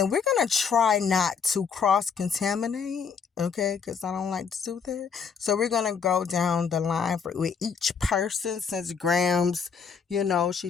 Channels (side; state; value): right; quieter; 6.1 dB